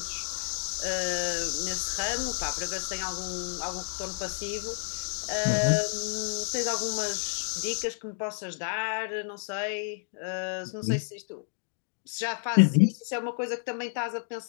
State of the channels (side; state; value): right; silent; digital silence